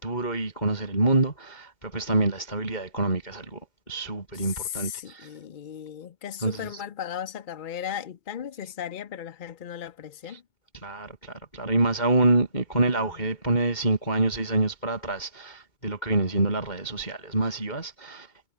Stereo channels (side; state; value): right; late; 2.2 ms